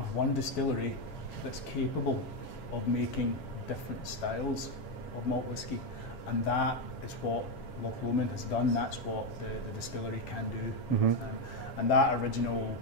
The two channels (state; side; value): late; right; 7.3 ms